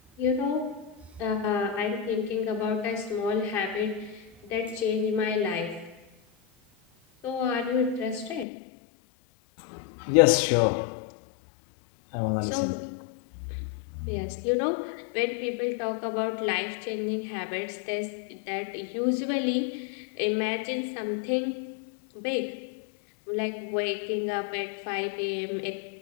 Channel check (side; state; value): right; drops out; at 8.5 s